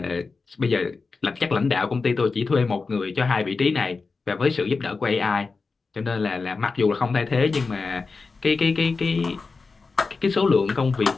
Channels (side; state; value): right; quieter; 4.3 dB